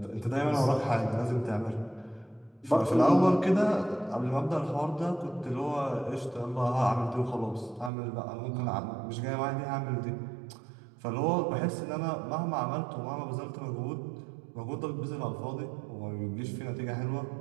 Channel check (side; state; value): left; drops out; at 7.9 s